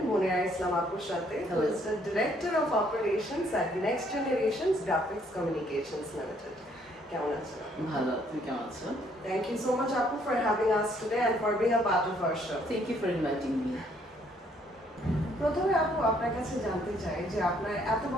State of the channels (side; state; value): both; normal; correlation 0.66